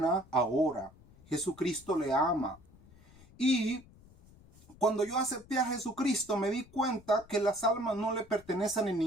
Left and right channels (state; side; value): noise; left; rumble, 24 dB below the sound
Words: ahora. Jesucristo le ama. Y cuando yo acepté a Jesucristo, me di cuenta que las almas no le pertenecen a